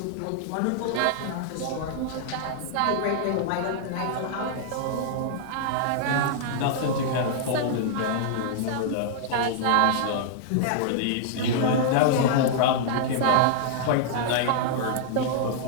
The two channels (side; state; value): both; different; correlation -0.01